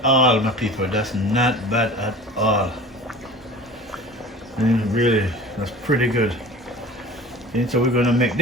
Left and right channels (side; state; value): both; normal; correlation 0.40